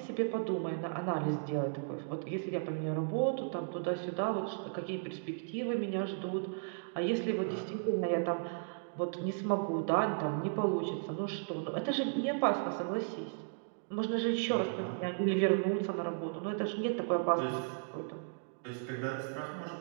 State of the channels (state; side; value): silent; left; digital silence